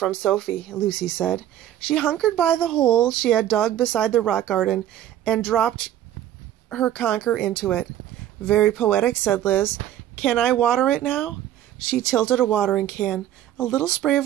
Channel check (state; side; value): quieter; left; 11.9 dB